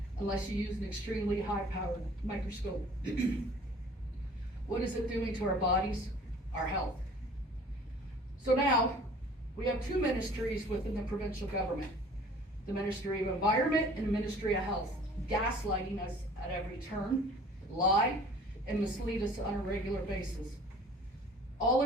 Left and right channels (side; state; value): both; normal; correlation 0.49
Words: unless you use an extremely high-powered microscope. What is it doing to our bodies? Our health. So now, we have two ministries within the provincial government. The Ministry of Environment and the Ministry of Health, gaslighting us at every turn, lie, and mislead us on a regular basis. All